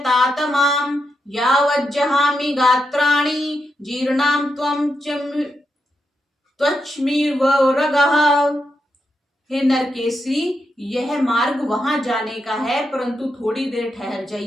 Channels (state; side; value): normal; both; correlation 0.84